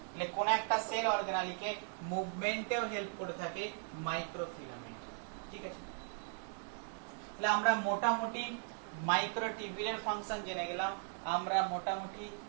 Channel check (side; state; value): left; silent; 52 dB below the other